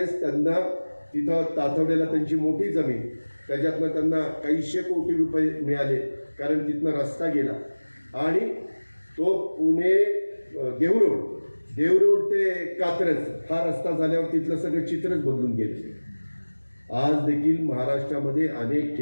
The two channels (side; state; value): both; inverted; correlation -1.00